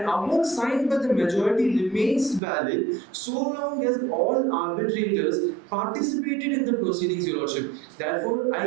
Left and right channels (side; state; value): left; drops out; at 2.4 s